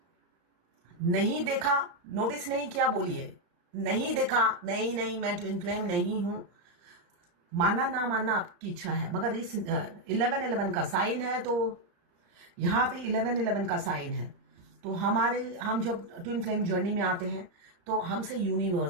नहीं देखा, नोटिस नहीं किया, बोलिए नहीं देखा, नहीं नहीं मैं ट्विन फ्लेम नहीं हूं। मानना ना मानना आपकी इच्छा है, मगर इस 11:11 का साइन है, तो यहाँ पे 11:11 का साइन है। तो हम जब ट्विन फ्लेम जर्नी में आते हैं तो हमसे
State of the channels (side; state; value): left; late; 34 ms